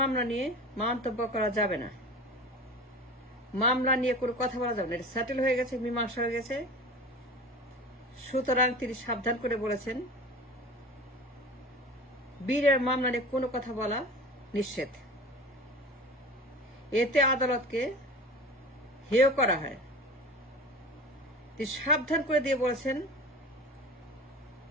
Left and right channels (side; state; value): both; normal; correlation 0.36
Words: নিয়ে মন্তব্য করা যাবে না, মামলা নিয়ে কোনো কথা বলা যাবে না, এটা সেটেল হয়ে গেছে, মীমাংসা হয়ে গেছে। সুতরাং তিনি সাবধান করে বলেছেন, বিডের মামলা নিয়ে কোনো কথা বলা নিষেধ। এতে আদালতকে হেয় করা হয়। তিনি সাবধান করে দিয়ে বলেছেন,